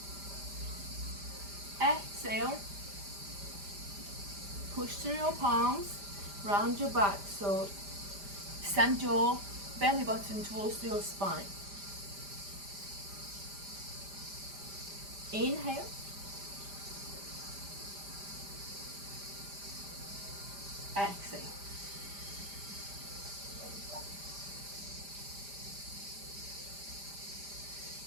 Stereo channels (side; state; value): left; late; 5.0 ms